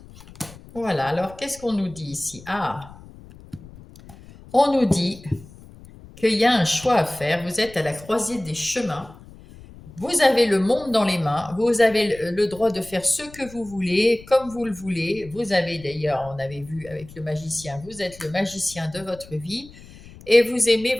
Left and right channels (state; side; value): noise; left; rumble, 20 dB below the sound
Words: voilà, alors qu'est-ce qu'on nous dit ici? On nous dit qu'il y a un choix à faire, vous êtes à la croisée des chemins, vous avez le monde dans les mains, vous avez le droit de faire ce que vous voulez, comme vous le voulez, vous avez d'ailleurs, on avait vu avec le magicien, vous êtes le magicien de votre vie et vous aimez